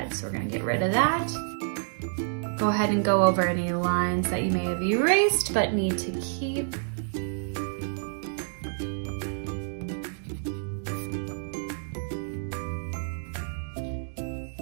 So we're gonna get rid of that. Go ahead and go over any lines that you may have erased but need to keep.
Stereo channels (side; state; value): left; silent; digital silence